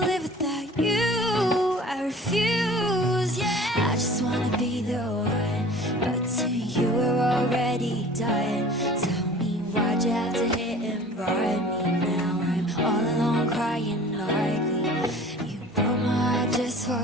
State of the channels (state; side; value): normal; both; correlation 0.45